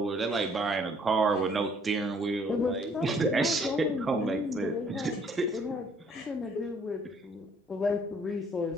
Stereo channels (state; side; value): normal; both; correlation 0.62